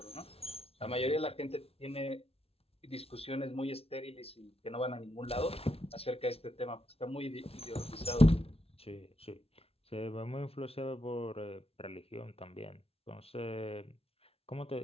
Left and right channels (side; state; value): right; late; 0.29 ms